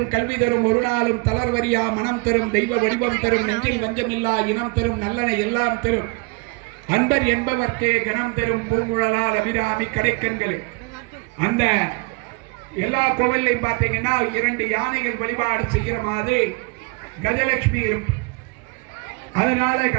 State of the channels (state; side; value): quieter; left; 29.5 dB